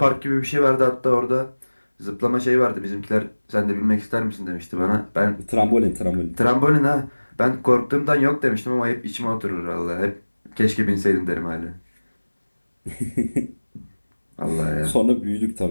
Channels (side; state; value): both; inverted; correlation -1.00